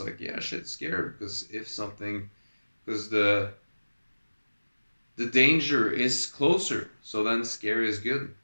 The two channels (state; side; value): inverted; both; correlation -1.00